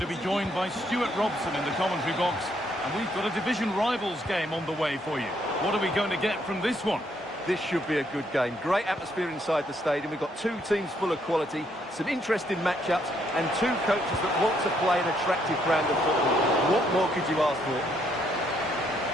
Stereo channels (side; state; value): both; normal; correlation 0.72